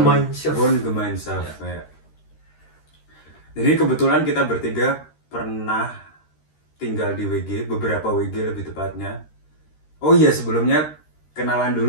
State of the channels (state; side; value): late; right; 13 ms